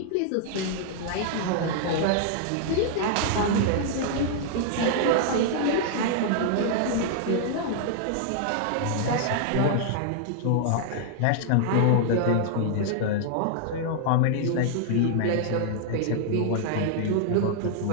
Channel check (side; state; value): both; different; correlation -0.01